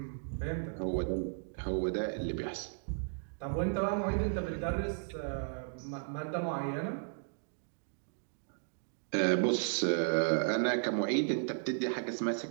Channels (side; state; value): left; silent; digital silence